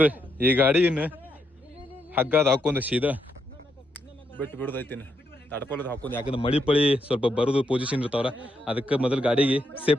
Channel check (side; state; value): both; normal; correlation 0.79